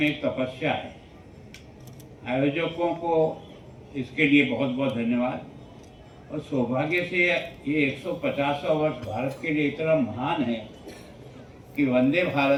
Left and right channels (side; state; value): both; identical; correlation 1.00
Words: एक तपस्या है। आयोजकों को इसके लिए बहुत बहुत धन्यवाद। और सौभाग्य से ये 150वां वर्ष भारत के लिए इतना महान है कि वंदे